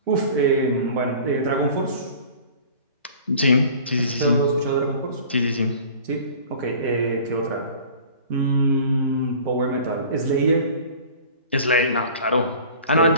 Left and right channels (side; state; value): both; inverted; correlation -0.45